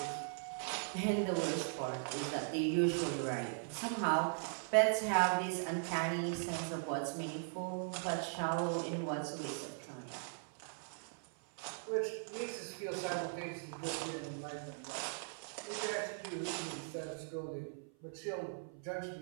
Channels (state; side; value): silent; left; 51 dB below the other